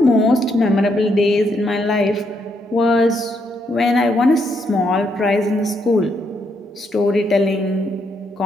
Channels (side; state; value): both; normal; correlation 0.76